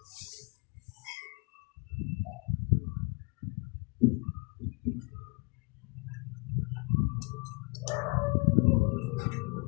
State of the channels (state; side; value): quieter; right; 30.7 dB